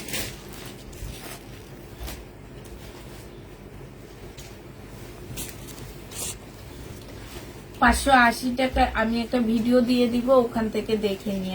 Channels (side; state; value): both; identical; correlation 1.00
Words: টাকা আমি একটা ভিডিও দিয়ে দিব, ওখান থেকে দেখে